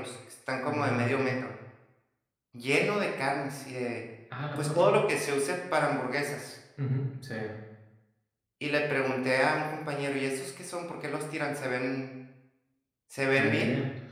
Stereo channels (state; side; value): identical; both; correlation 1.00